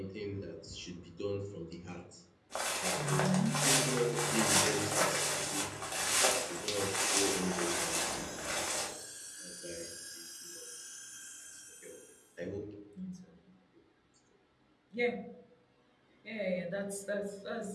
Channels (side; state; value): both; identical; correlation 1.00